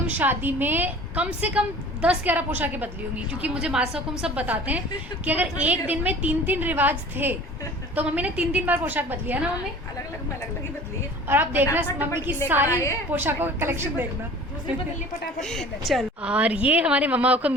शादी में कम से कम 10-11 पोशाकें बदली होंगी, क्योंकि मुझे मासा हुकुम सब बताते हैं कि अगर एक दिन में 3-3 रिवाज थे तो मम्मी ने 3-3 बार पोशाक बदली है ना मम्मी। अलग ही बदली है। और आप देखना फटाफट मम्मी की लेकर सारी आए। पोशाकों का कलेक्शन देखना। दूसरी बदली फटाफट। चल। और ये हमारे मम्मा हुकुम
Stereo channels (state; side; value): normal; both; correlation 0.44